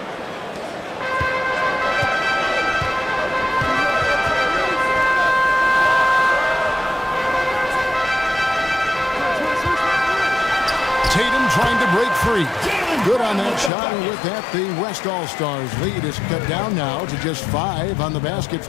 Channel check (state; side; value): drops out; right; at 13.7 s